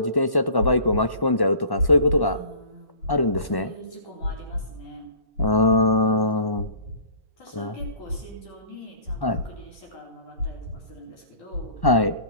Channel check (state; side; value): late; right; 1.1 ms